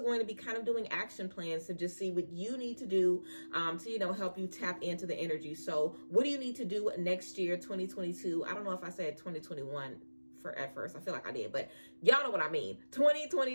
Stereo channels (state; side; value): inverted; both; correlation -1.00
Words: to be kind of doing action plans to just see what you need to do to, help you tap into the energy. So what do you need to do next year, 2022? I don't know if I said 2021 at first. I feel like I did, but y'all know what I mean.